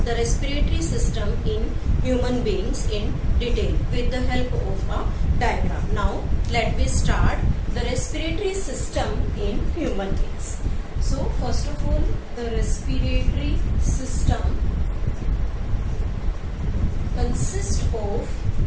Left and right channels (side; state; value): both; identical; correlation 1.00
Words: the respiratory system in human beings in detail with the help of a diagram. Now, let me start the respiratory system in human beings. So, first of all, the respiratory system consists of